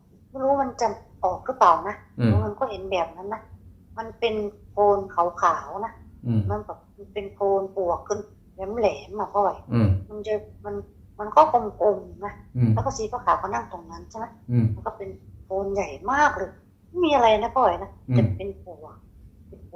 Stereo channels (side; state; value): both; identical; correlation 1.00